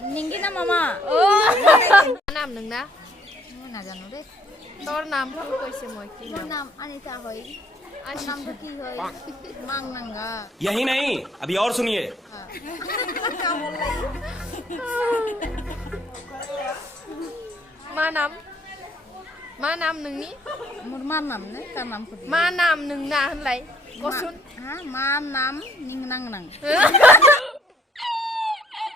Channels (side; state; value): both; normal; correlation 0.62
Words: निंगि ना मामा नाम नोंना ना जानो दे তোর নাম কইছে মই কি मोर नाम अनिता होय नाम तो की होय मांग नंगा यही नहीं अभी और सुनिए का बोल लाई मा नाम नोंनि मोर मा नाम ने का नाम खुद मा नाम नोंना होनलाय कसुन हा मा नाम निंग नंग नंग